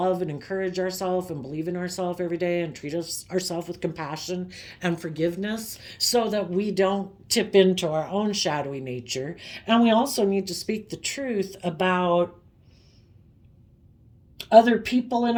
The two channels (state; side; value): identical; both; correlation 1.00